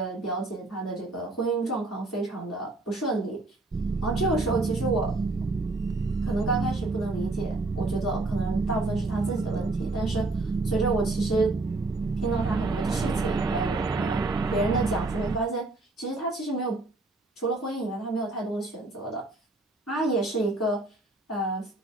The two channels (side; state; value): left; quieter; 3.0 dB